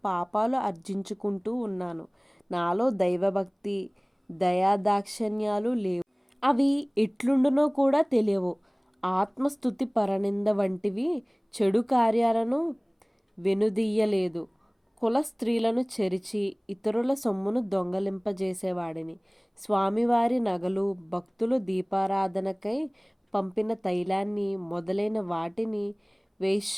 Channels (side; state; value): both; identical; correlation 1.00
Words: పాపాలు ఆర్జించుకుంటూ ఉన్నాను. నాలో దైవభక్తి దయాదాక్షిణ్యాలు లేవు. అవి ఎట్లుండునో కూడా తెలియవు. ఆత్మస్థుతి పరనింద వంటివి చెడు కార్యాలను వెనుదీయలేదు. కుల స్త్రీలను చెరిచి ఇతరుల సొమ్మును దొంగలింపజేసేవాడిని. స్వామివారి నగలు, భక్తులు దీపారాధనకై పంపిన తైలాన్ని మొదలైన వాటిని